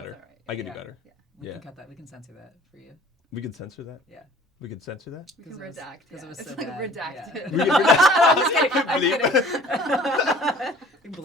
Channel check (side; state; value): both; normal; correlation 0.50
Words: that's all right. I could Yeah. do better. Yeah. We Yeah. can cut that. We can censor that for you. We could censor that? Yeah. We could censor that? We can 'Cause it was- redact. 'cause it Yeah. was It's so like bad, redacted. yeah. We could I'm just kidding. I'm Bleep. kidding. Blur